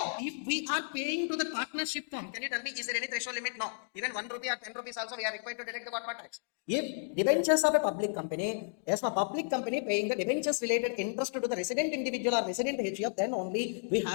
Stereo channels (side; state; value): right; silent; digital silence